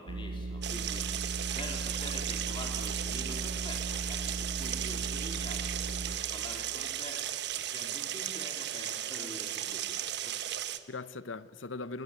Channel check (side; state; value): left; quieter; 6.3 dB